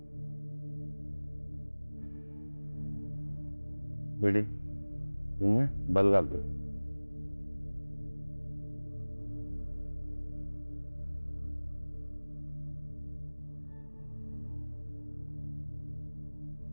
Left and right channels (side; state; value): both; inverted; correlation -1.00